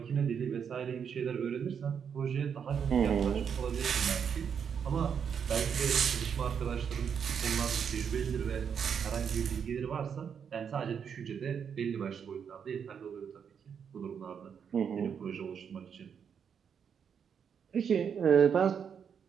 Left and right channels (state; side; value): quieter; left; 7.3 dB